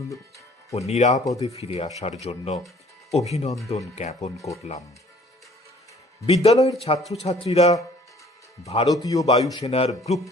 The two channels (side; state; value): both; normal; correlation 0.56